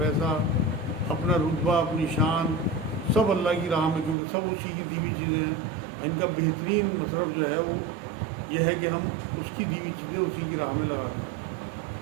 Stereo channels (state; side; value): drops out; left; at 4.2 s